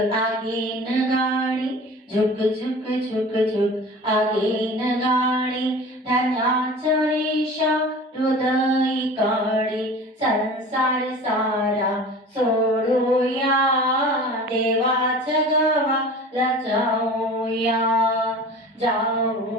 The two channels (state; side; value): normal; both; correlation 0.39